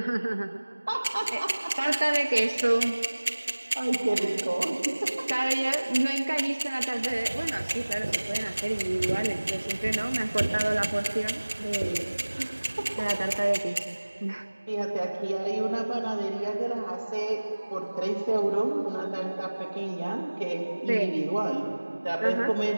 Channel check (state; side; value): inverted; both; correlation -1.00